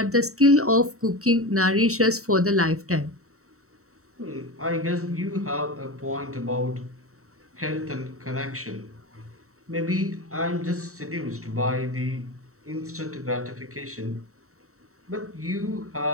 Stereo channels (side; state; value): left; late; 0.64 ms